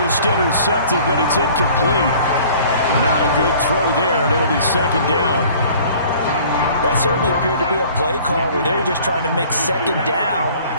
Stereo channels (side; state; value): both; inverted; correlation -0.51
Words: intercept it, but it's incomplete. Not a good throw there, and it'll be 2nd down. That certainly appeared to be a play call where they were just trying to make 2nd down,